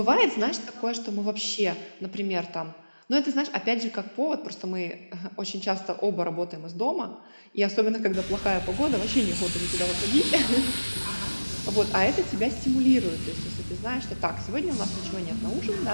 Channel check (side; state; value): both; inverted; correlation -1.00